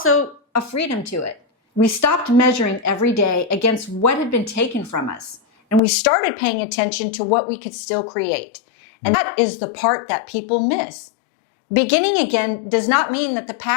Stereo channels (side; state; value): right; drops out; at 5.8 s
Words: a freedom to it. We stopped measuring every day against what had been taken from us, and we started paying attention to what we could still create. And that is the part that people miss. Beginning again does not mean that the